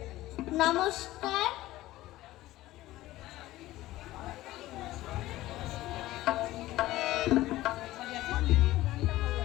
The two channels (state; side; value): quieter; right; 16.5 dB